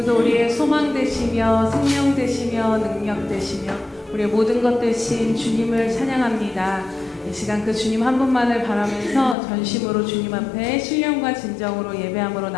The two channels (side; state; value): right; drops out; at 9.3 s